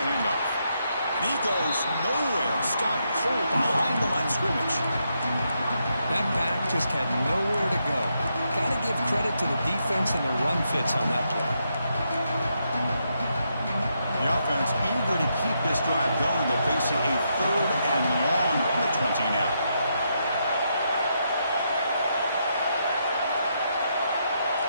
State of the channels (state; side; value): inverted; both; correlation -0.80